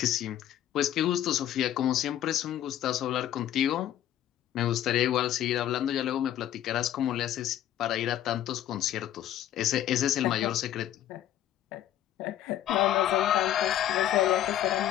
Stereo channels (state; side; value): quieter; right; 11.8 dB